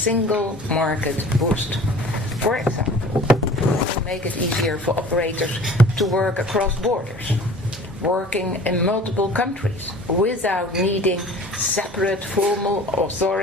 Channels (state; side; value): normal; both; correlation 0.45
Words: market boost. For example, to make it easier for operators to work across borders, working in multiple countries without needing separate formal